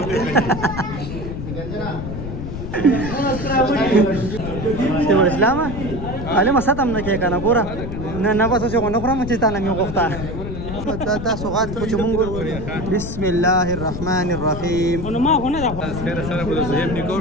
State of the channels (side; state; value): left; noise; rumble, 7 dB below the sound